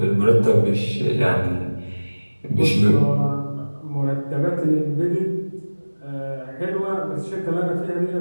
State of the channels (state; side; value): inverted; both; correlation -1.00